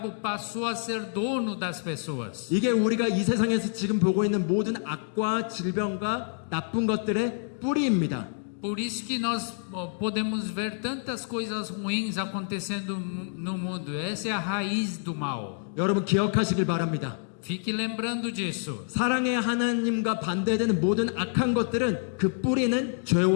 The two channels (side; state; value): right; silent; digital silence